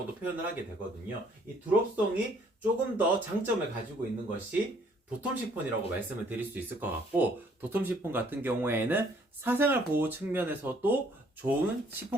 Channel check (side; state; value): both; normal; correlation 0.62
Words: 표현을 하게 되거든요. 이 드롭송이 조금 더 장점을 가지고 있는 것이 도톰 시폰이라고 말씀을 드릴 수 있을 것 같고 도톰 시폰 같은 경우에는 사생활 보호 측면에서도 좋은